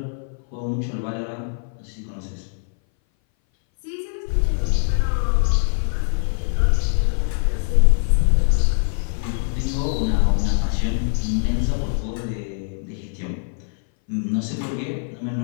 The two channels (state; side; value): silent; right; 60 dB below the other